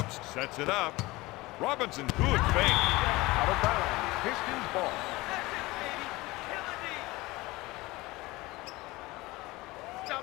sets it up. Robinson, good fake. Out of bounds, Pistons ball.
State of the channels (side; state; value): right; quieter; 20.8 dB